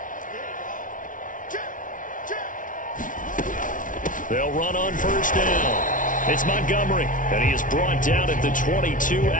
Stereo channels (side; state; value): right; late; 0.38 ms